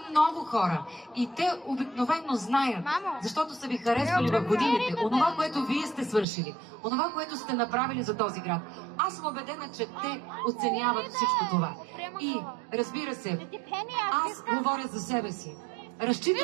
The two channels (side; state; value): left; drops out; at 6.2 s